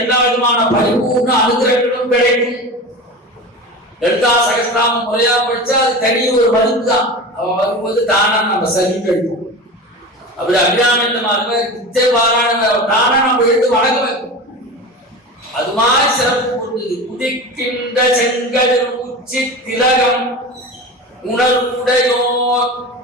விதமான பரிபூர்ண அனுகிரகங்களும் கிடைக்கும். லலிதா சகஸ்ரநாமம் முறையா படிச்சா அது தனி ஒரு மருந்து தான். அவ வரும்போது தானா நம்ம சரி கிடைக்கும். அப்படி அபிராமித்தமாக நித்திய பாராயண தானா நம்ம எடுத்து வணங்க வைக்கும். அது மாதிரி சிறப்பு பொருந்தது. உதிக்கின்ற செங்கதிர் உச்சி திலகம் உணர்வுடையோர்.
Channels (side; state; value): both; normal; correlation 0.29